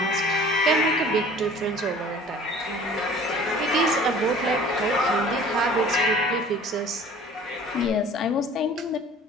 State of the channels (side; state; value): both; normal; correlation 0.47